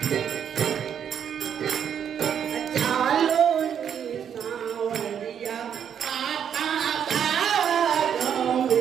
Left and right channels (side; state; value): left; quieter; 8.4 dB